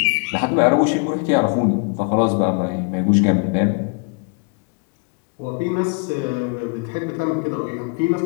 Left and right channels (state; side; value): quieter; right; 35.4 dB